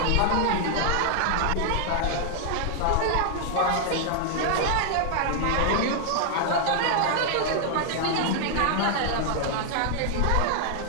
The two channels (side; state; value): both; different; correlation 0.00